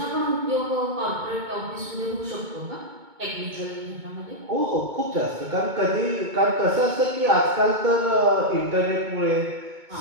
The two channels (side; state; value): left; late; 2.2 ms